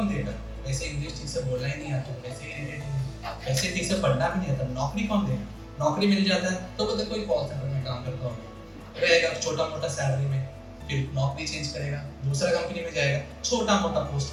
देगा, वैसे इंग्लिश ठीक से बोलना ही नहीं आता, वैसे ठीक से पढ़ना भी नहीं आता, नौकरी कौन देगा। नौकरी मिल जाता है तो बोलते कोई कॉल सेंटर में काम करता होगा, रहेगा छोटा मोटा सैलरी में, फिर नौकरी चेंज करेगा, दूसरा कंपनी में जाएगा, छोटा मोटा पोस्ट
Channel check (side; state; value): both; identical; correlation 1.00